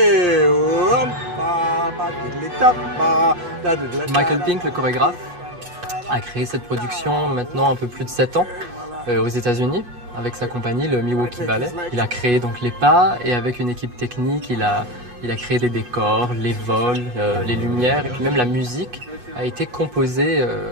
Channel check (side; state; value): left; late; 8.2 ms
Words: Michael Pink, le chorégraphe, a créé cette production maintenant un peu plus de 7 ans aux États-Unis avec sa compagnie, le Milwaukee Ballet. Il a créé donc les pas et avec une équipe technique, il a créé les décors, les vols, les lumières et puis même la musique a été composée